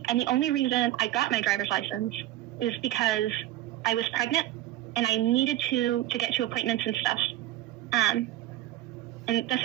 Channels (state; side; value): quieter; left; 14.9 dB